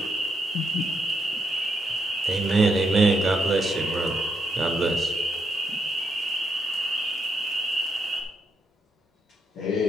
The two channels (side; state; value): both; normal; correlation 0.78